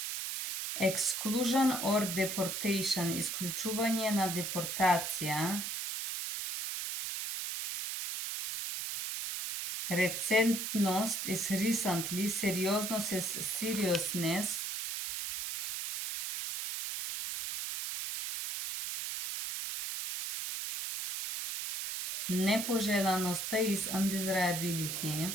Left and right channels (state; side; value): noise; right; hiss, 3 dB below the sound